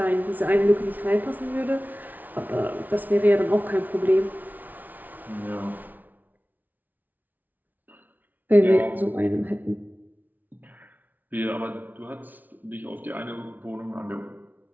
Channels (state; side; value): late; left; 0.081 ms